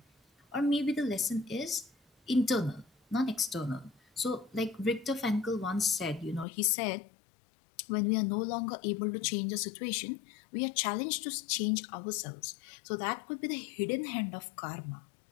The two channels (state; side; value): drops out; right; at 6.5 s